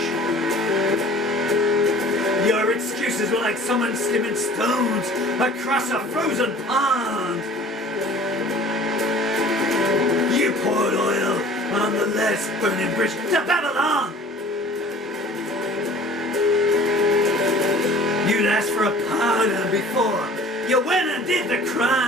Your excuses were like someone skimming stones across a frozen pond. You poured oil on the last burning bridge to Babylon. You'd asked for a pardon before you went and did the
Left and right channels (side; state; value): both; normal; correlation 0.47